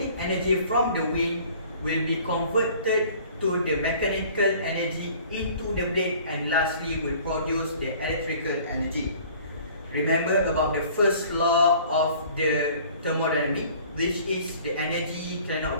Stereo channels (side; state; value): both; inverted; correlation -0.51